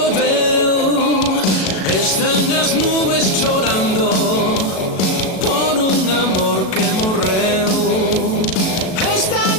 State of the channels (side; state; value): right; late; 37 ms